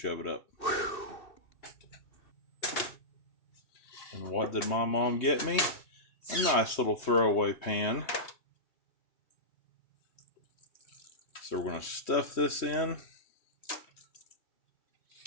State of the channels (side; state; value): right; late; 3.2 ms